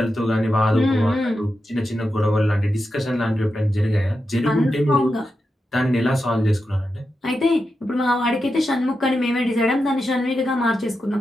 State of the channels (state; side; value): normal; both; correlation 0.89